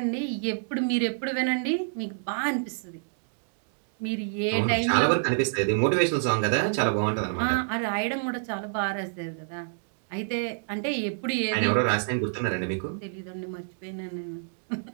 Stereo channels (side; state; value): left; silent; digital silence